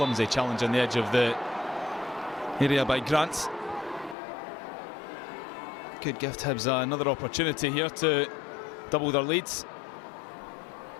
challenge on the edge of the area by Grant. Could give Hibs another opportunity here to double their leads.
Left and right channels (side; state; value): right; drops out; at 4.2 s